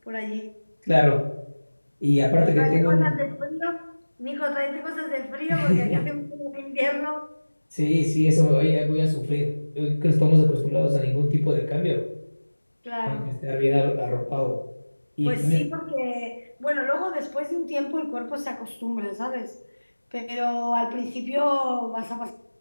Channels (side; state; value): both; inverted; correlation -1.00